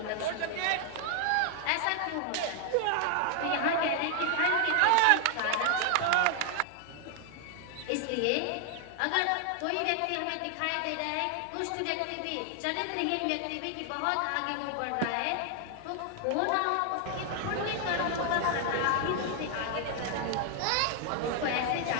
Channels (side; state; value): both; different; correlation 0.00